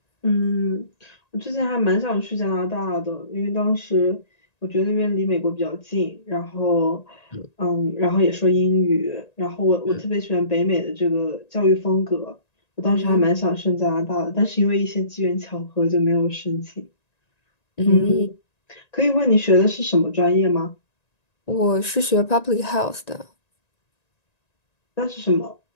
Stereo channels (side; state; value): right; late; 1.9 ms